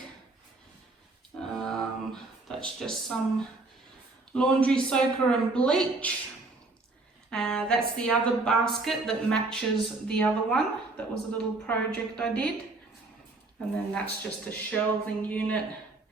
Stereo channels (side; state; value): left; quieter; 3.3 dB